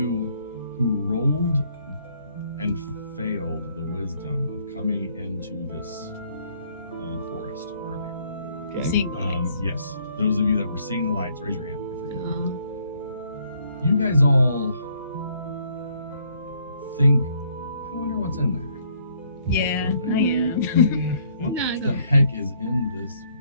who rolled and failed the wisdom of coming into this forest earlier. Seeing the lights. Yes, those of you that were seeing the lights, raise your hand. I forget. Uh, You guys all think, I wonder what's in there. Yeah, I am. What No, I the don't. heck is in this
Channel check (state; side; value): inverted; both; correlation -0.66